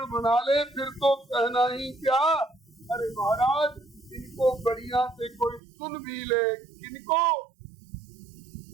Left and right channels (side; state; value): left; drops out; at 5.6 s